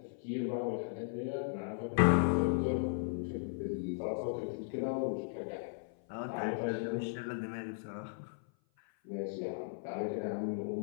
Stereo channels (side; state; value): right; silent; 53 dB below the other